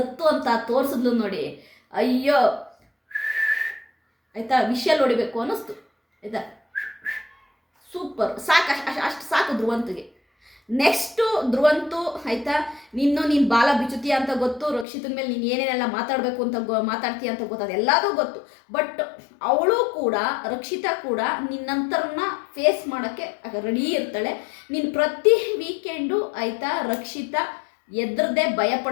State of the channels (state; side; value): drops out; right; at 14.9 s